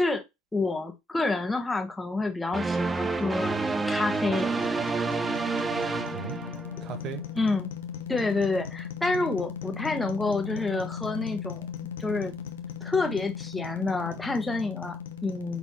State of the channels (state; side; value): normal; both; correlation 0.78